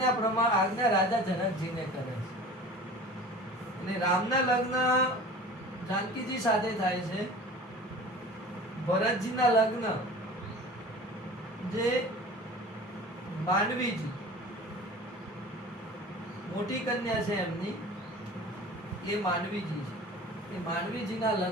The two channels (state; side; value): normal; both; correlation 0.40